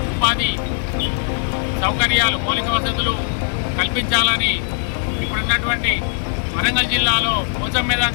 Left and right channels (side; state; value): right; silent; digital silence